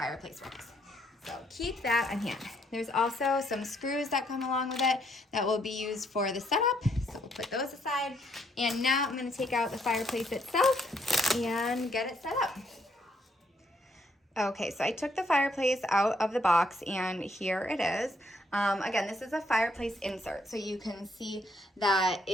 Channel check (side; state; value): both; normal; correlation 0.71